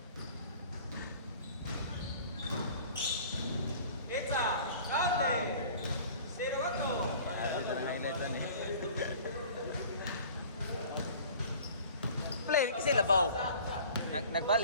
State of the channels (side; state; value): both; inverted; correlation -0.46